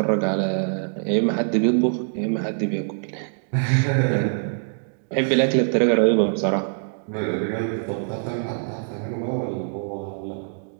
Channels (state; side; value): silent; left; digital silence